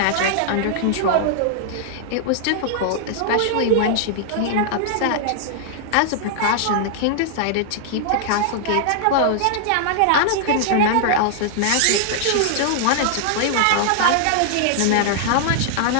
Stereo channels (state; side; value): different; both; correlation -0.01